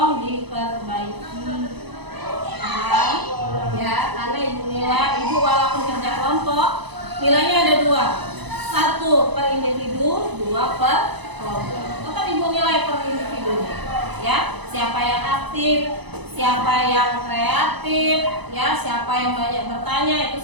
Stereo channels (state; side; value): late; left; 1.0 ms